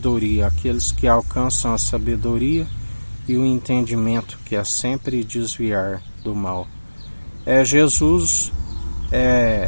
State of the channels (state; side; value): inverted; both; correlation -1.00